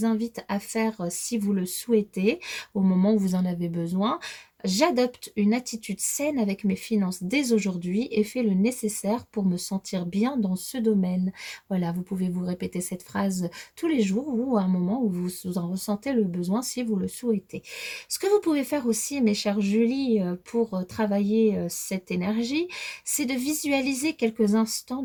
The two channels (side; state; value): both; identical; correlation 1.00